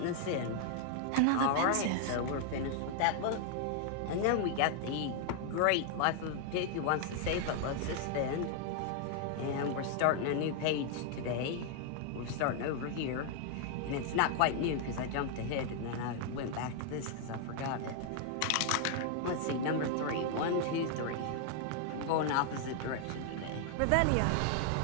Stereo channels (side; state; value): both; different; correlation 0.00